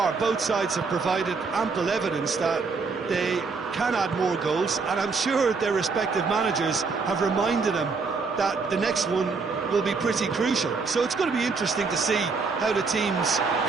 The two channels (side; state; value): left; quieter; 4.6 dB